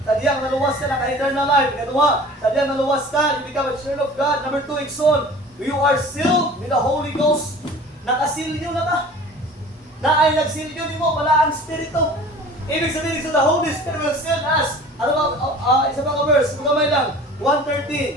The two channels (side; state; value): both; normal; correlation 0.43